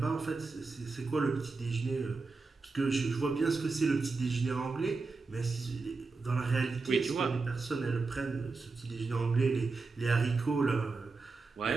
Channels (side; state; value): left; quieter; 4.0 dB